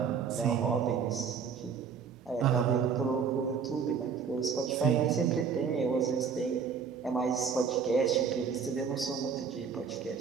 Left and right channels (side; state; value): left; quieter; 6.4 dB